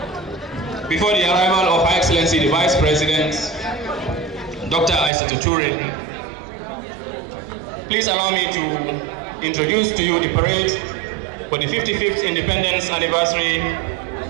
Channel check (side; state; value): left; drops out; at 5.1 s